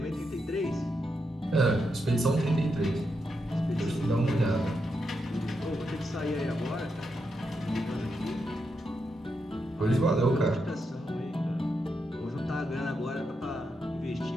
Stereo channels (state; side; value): normal; both; correlation 0.84